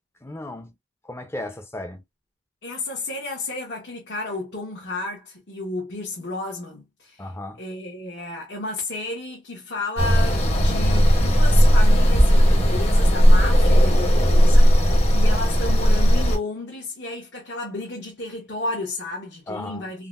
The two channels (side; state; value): both; normal; correlation 0.90